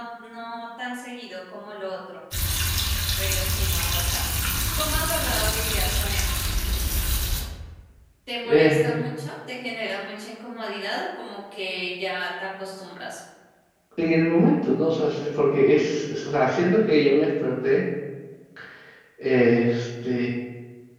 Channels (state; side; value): identical; both; correlation 1.00